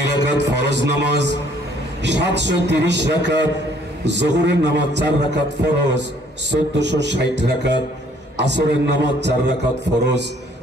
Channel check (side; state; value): both; normal; correlation 0.61